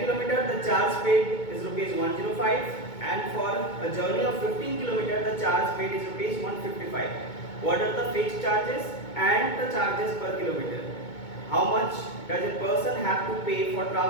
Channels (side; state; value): right; late; 2.2 ms